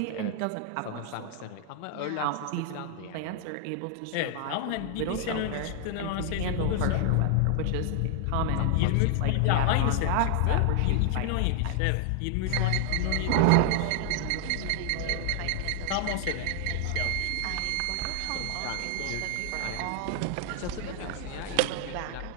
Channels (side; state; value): both; different; correlation 0.00